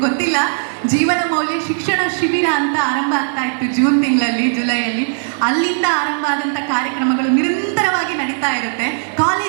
ಗೊತ್ತಿಲ್ಲ, ಜೀವನ ಮೌಲ್ಯ ಶಿಕ್ಷಣ ಶಿಬಿರ ಅಂತ ಆರಂಭ ಆಗ್ತಾ ಇತ್ತು ಜೂನ್ ತಿಂಗಳಲ್ಲಿ, ಜುಲೈಯಲ್ಲಿ. ಅಲ್ಲಿಂದ ಆರಂಭ ಆದಂಥ ಕಾರ್ಯಕ್ರಮಗಳು ನಿರಂತರವಾಗಿ ನಡೀತಾ ಇರುತ್ತೆ.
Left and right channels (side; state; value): left; silent; 68 dB below the other